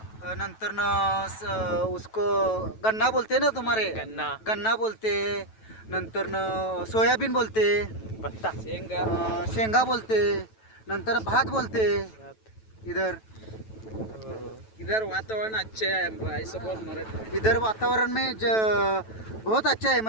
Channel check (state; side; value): late; right; 9.1 ms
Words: नंतर न उसको गन्ना बोलते ना तुम्हारे. गन्ना बोलते. नंतर न सोयाबीन बोलते. ಭತ್ತ, शेंगा बोलते. नंतर भात बोलते. इधर वातावरण अच्छे है, ऐसा बोल मराठी. इधर वातावरण में बहुत अच्छा है.